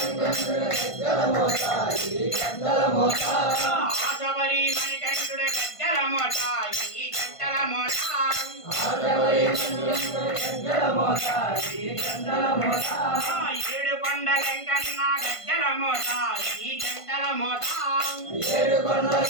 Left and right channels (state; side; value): late; right; 1.5 ms